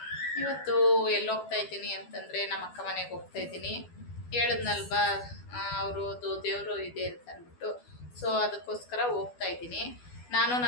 ಇವತ್ತು ಎಲ್ಲಿ ಹೋಗ್ತಾ ಇದ್ದೀನಿ ಅಂತಂದರೆ ನಮ್ಮ ಅಕ್ಕ ಮನೆಗೆ ಹೋಗ್ತಾ ಇದ್ದೀನಿ. ಹೇಳಿದ್ನಲ್ವಾ ಅವ್ರದ್ದು ದೇವರು ಇದೆ ಅಂತ ಅಂದ್ಬಿಟ್ಟು, ಸೊ ಅದಕ್ಕೋಸ್ಕರ ಹೋಗ್ತಾ ಇದ್ದೀನಿ. ನಾನು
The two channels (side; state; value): right; late; 12 ms